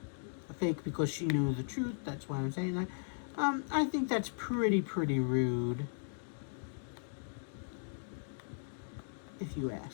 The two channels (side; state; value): right; silent; digital silence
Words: fake because she knew the truth. That's why I'm saying that. I think that's pretty rude, if you